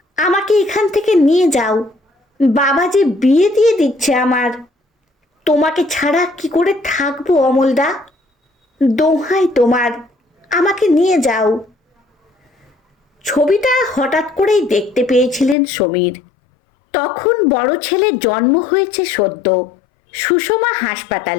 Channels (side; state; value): right; drops out; at 15.6 s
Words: আমাকে এখান থেকে নিয়ে যাও, বাবা যে বিয়ে দিয়ে দিচ্ছে আমার, তোমাকে ছাড়া কি করে থাকবো অমলদা, দোহাই তোমার, আমাকে নিয়ে যাও। ছবিটা হঠাৎ করেই দেখতে পেয়েছিলেন সমীর। তখন বড় ছেলের জন্ম হয়েছে সদ্য, সুষমা